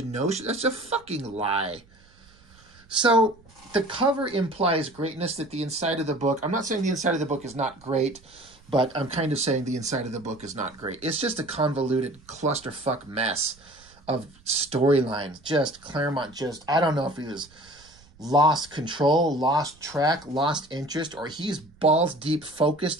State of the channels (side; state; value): right; noise; rumble, 27 dB below the sound